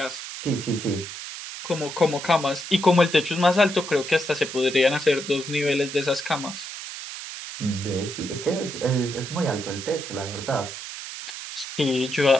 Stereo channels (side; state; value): right; noise; hiss, 9 dB below the sound